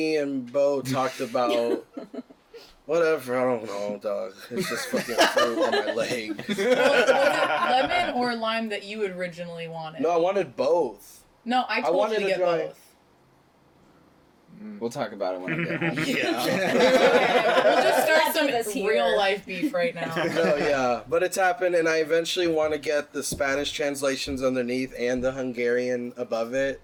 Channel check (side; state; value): both; identical; correlation 1.00